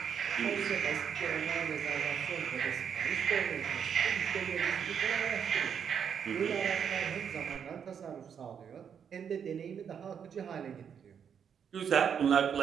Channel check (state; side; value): quieter; left; 7.7 dB